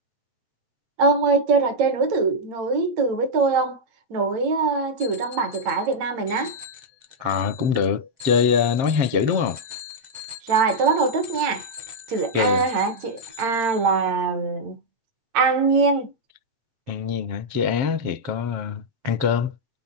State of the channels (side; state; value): left; late; 8.8 ms